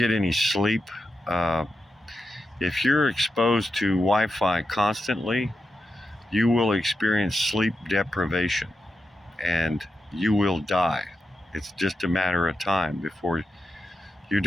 any sleep. If you're exposed to Wi-Fi constantly, you will experience sleep deprivation and you will die. It's just a matter of time before you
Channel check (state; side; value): normal; both; correlation 0.88